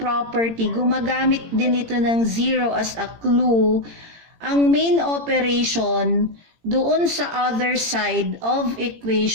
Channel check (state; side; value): late; left; 18 ms